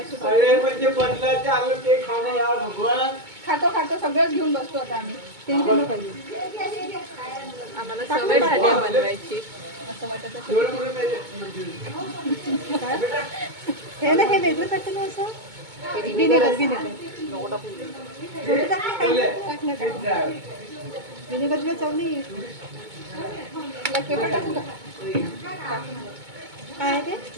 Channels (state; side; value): late; left; 2.2 ms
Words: अरे म्हणजे बदलाचे आलं ते खाणं यार भगवान खातो सगळंच घेऊन बसतो आता आम्ही टेन्शन नको पाहिजे आम्हाला सवय झाली आहे बनवायची असं वाटत विनेगर हे ना हे वेगळं टाकलं ना असं विनेगर विनेगर चव नाही काय आहे ते